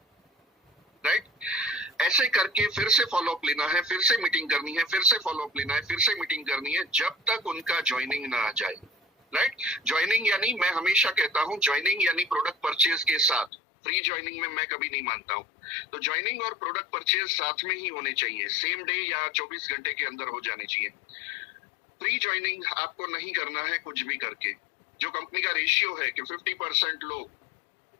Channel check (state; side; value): drops out; right; at 13.5 s